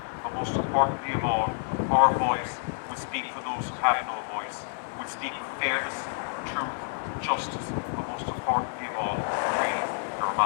but most importantly of all, our voice will speak for those who have no voice, will speak with fairness, truth, justice, but most importantly of all, freedom, the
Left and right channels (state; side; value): silent; right; 59 dB below the other